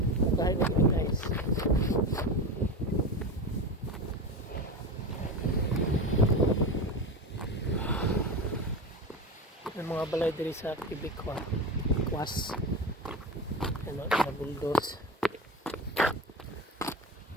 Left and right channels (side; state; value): both; normal; correlation 0.24